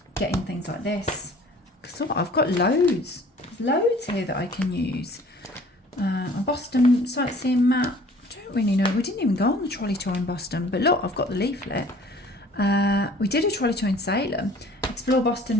getting things like this. Because I've got loads. There's loads here that I can use. A Boston sightseeing map. I don't really know. We didn't even go on the trolley tour in Boston. But look, I've got the leaflet. We did a trolley tour in Salem, explore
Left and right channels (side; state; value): both; normal; correlation 0.51